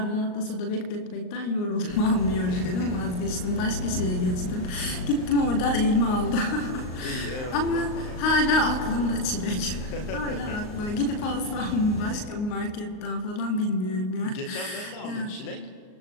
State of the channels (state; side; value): late; right; 38 ms